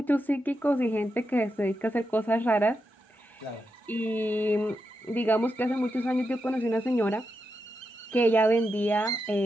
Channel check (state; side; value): normal; both; correlation 0.86